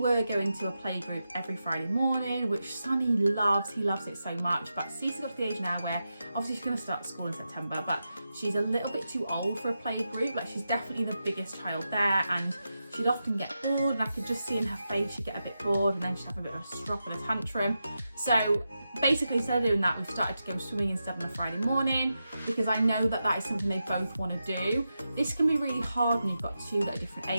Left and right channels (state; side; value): inverted; both; correlation -0.89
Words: going to a playgroup every Friday morning, which Sonny loves. He loves it so much. But Cece got to the age now where obviously she's going to start school in September, but she's a little bit too old for a playgroup. Like, she's definitely the biggest child there, and she'd often get bored, and I could just see in her face she'd get a bit bored, and then she'd have a bit of a strop and a tantrum. So basically, instead of doing that, we've started to go swimming instead on a Friday morning, because I know that is something they both want to do. This can be really hard when you've got 2 that are different